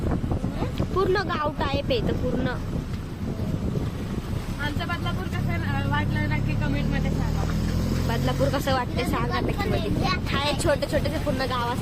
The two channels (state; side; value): identical; both; correlation 1.00